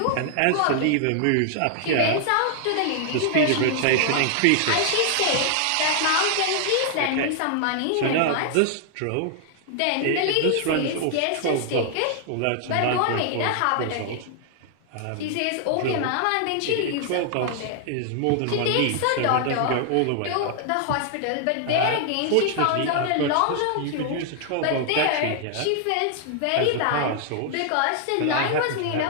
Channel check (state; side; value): different; both; correlation 0.00